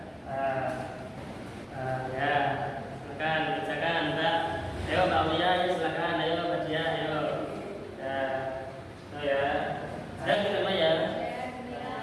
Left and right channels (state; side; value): identical; both; correlation 1.00